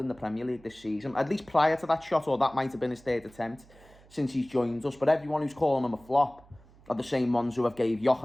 the Premier League this season? At least prior to that shot, or that might have been his 3rd attempt since he's joined us. But everyone who's calling him a flop are the same ones who have gave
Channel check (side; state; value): right; noise; hum, 25 dB below the sound